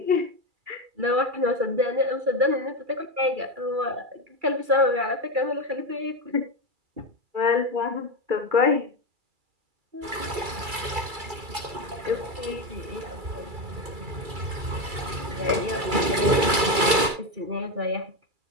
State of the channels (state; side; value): late; left; 2.3 ms